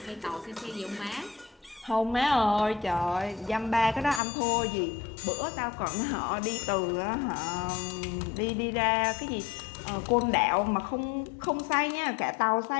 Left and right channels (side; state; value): right; drops out; at 4.2 s